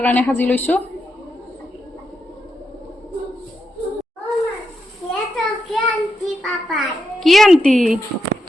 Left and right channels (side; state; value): both; normal; correlation 0.85